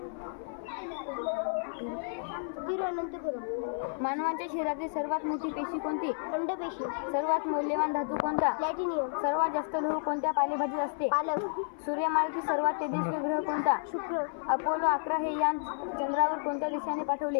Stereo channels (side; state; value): right; silent; 57 dB below the other